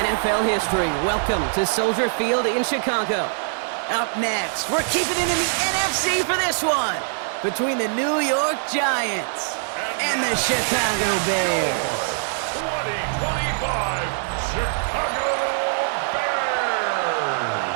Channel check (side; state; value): left; silent; digital silence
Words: NFL history. Welcome to Soldier Field in Chicago. Up next, we're keeping it in the NFC for this one, between the New York Giants and the Chicago Bears. 2025 Chicago Bears.